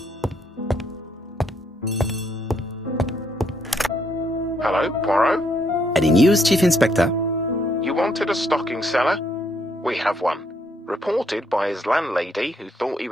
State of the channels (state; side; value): normal; both; correlation 0.72